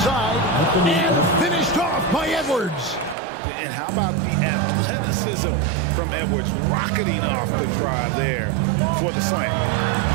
and finished off by Edwards. And how about the athleticism from Edwards rocketing off the drive there for the slam.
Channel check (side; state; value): left; drops out; at 3.2 s